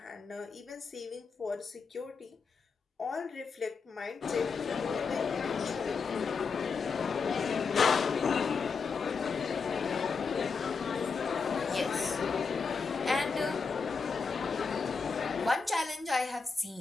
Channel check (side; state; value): right; quieter; 5.1 dB